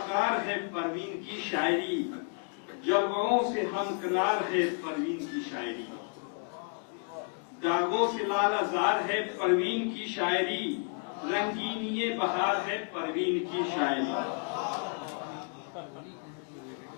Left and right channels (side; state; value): right; quieter; 37.6 dB